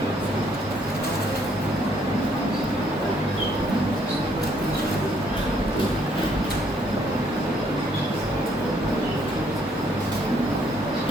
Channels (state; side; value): normal; both; correlation 0.67